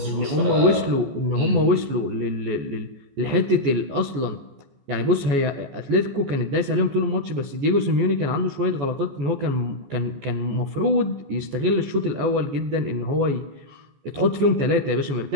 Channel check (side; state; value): left; late; 14 ms